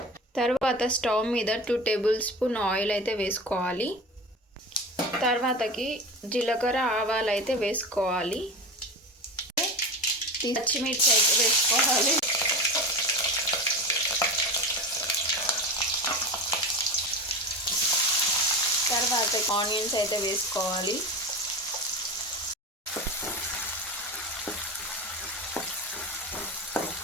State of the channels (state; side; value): normal; both; correlation 0.28